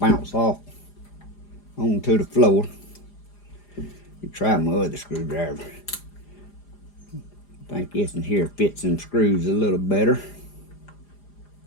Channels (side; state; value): right; late; 4.9 ms